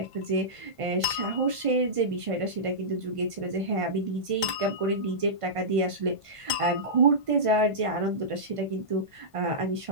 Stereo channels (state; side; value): late; left; 1.5 ms